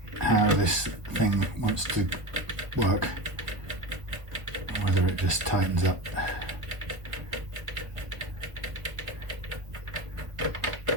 this thing wants to work, whether it just tightens up.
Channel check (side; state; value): left; late; 1.4 ms